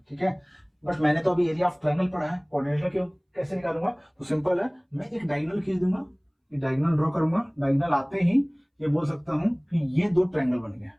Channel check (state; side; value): identical; both; correlation 1.00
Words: ठीक है। बट मैंने तो अभी एरिया ऑफ ट्रायंगल पढ़ा है, कोऑर्डिनेटर क्यों कैसे निकालूंगा, तो सिंपल है मैं एक डायगोनल खींच दूंगा, ये डायगोनल ड्रॉ करूंगा, डायगोनल आते ही ये बोल सकता हूं कि ये 2 ट्रायंगल बन गया,